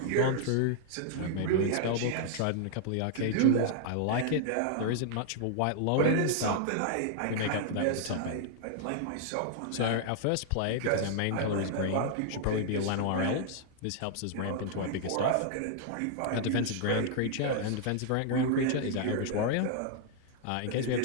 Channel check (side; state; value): both; different; correlation -0.01